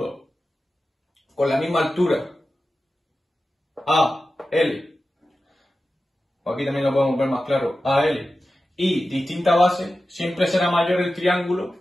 con la misma altura, AL, aquí también lo podemos ver más claro, AL, y distinta base, siempre será mayor el triángulo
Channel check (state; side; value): normal; both; correlation 0.93